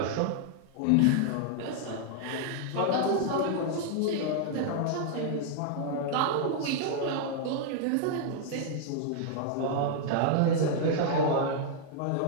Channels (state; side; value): different; both; correlation -0.01